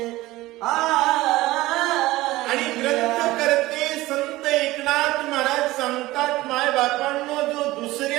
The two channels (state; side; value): quieter; left; 18.1 dB